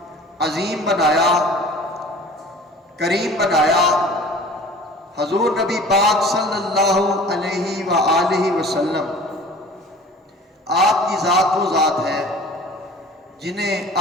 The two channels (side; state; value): both; normal; correlation 0.45